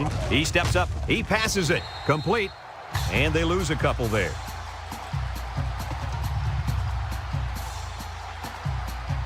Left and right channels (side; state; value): both; identical; correlation 1.00